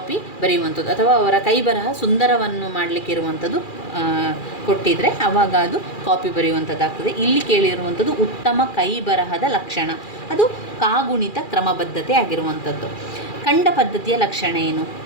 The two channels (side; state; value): right; late; 2.4 ms